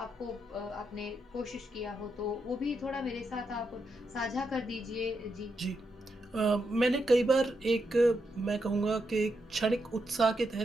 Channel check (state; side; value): normal; both; correlation 0.82